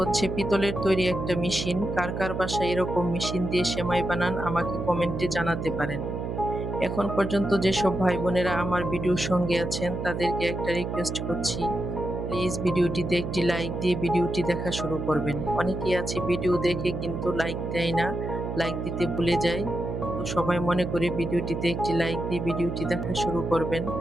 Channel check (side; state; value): right; noise; hum, 4 dB below the sound